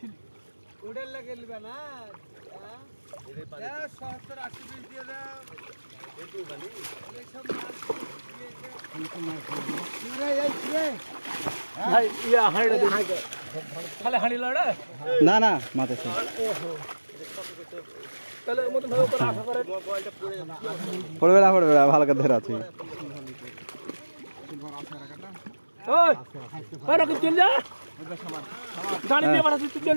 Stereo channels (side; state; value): both; inverted; correlation -1.00